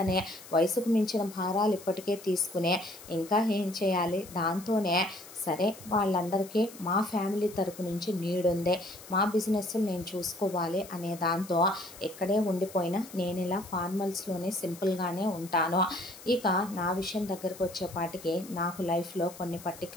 వయసుకు మించిన భారాలు ఇప్పటికే తీసుకునే ఇంకా ఏం చేయాలి. దాంతోనే సరే వాళ్ళందరికీ మా ఫ్యామిలీ తరపు నుంచి నీడుందే, మా బిజినెస్ నేను చూసుకోవాలి అనే దాంతో ఇక్కడే ఉండిపోయినా నేను ఇలా ఫార్మల్స్లోనే సింపుల్గానే ఉంటాను. ఇక నా విషయం దగ్గరకు వచ్చేపాటికి నాకు లైఫ్లో కొన్ని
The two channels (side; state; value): left; noise; hiss, 17 dB below the sound